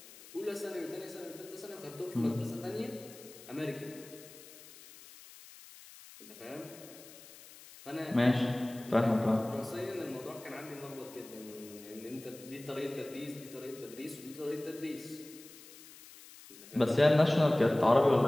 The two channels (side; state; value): left; noise; hiss, 19 dB below the sound